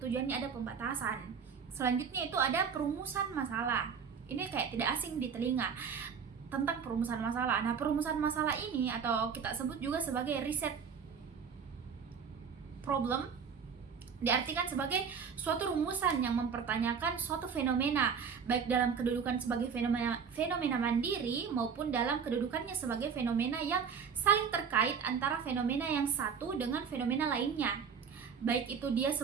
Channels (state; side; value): quieter; left; 6.5 dB